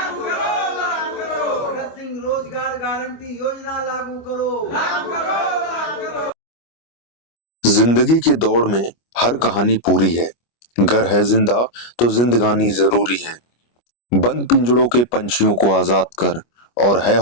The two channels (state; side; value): late; right; 25 ms